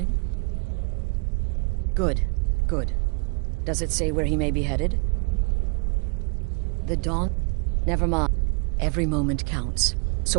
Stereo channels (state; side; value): quieter; left; 34.9 dB